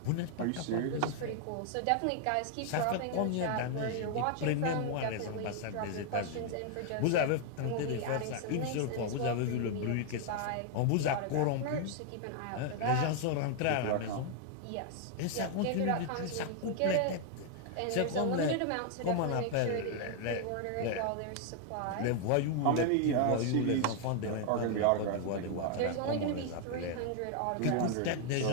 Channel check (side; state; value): both; different; correlation 0.00